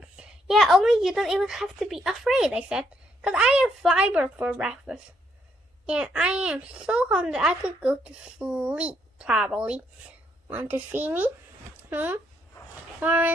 "Yeah, only you don't even have to be afraid," I said, "'cause I have fiber for breakfast. And I am so hungry I could go to sleep, probably. Want to see me?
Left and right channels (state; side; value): normal; both; correlation 0.73